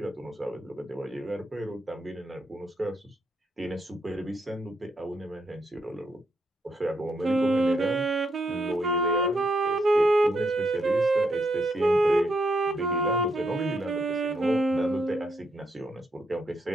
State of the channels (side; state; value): both; normal; correlation 0.78